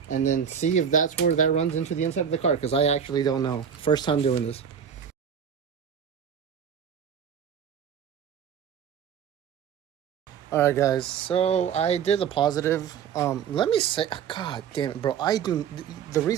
and then see if that's where that runs into the inside of the car, because I actually don't know. First time doing this. All right, guys, so I did the positive. Let me say, god damn it, bro, the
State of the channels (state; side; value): quieter; left; 7.9 dB